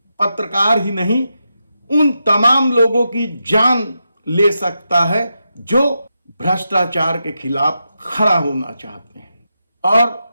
पत्रकार ही नहीं, उन तमाम लोगों की जान ले सकता है जो भ्रष्टाचार के खिलाफ खड़ा होना चाहते हैं। और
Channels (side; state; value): both; inverted; correlation -0.87